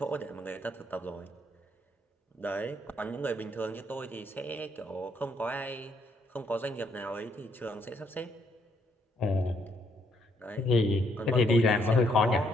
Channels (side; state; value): both; normal; correlation 0.71